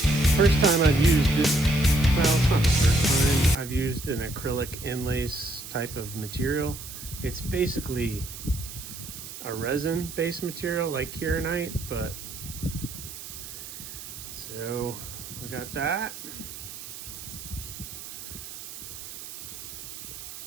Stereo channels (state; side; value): noise; right; hiss, 11 dB below the sound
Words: first time I've used this, well, it's not the first time I've used an acrylic inlace type of material. It's basically a resin based material like Kieranite, but so we got that.